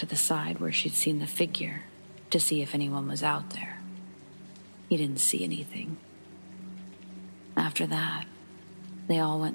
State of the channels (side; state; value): both; inverted; correlation -1.00